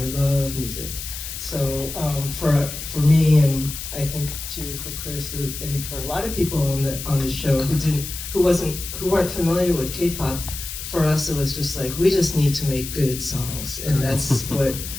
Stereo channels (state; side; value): noise; left; hiss, 8 dB below the sound